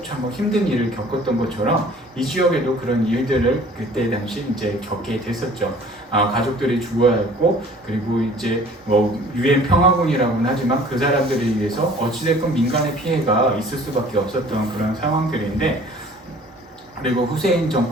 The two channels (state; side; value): normal; both; correlation 0.51